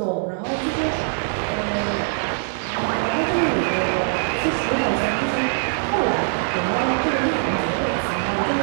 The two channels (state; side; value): silent; left; digital silence